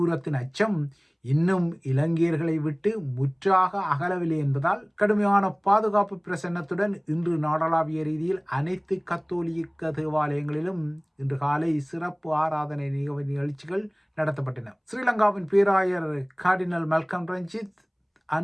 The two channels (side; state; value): both; identical; correlation 1.00